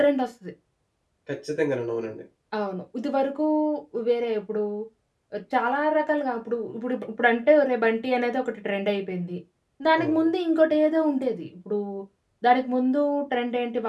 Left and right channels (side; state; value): both; identical; correlation 1.00